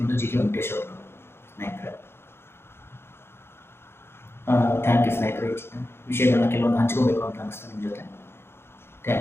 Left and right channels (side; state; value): right; late; 0.12 ms